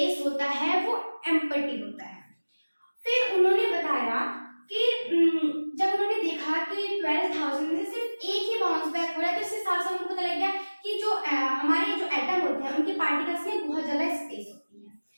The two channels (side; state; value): both; inverted; correlation -1.00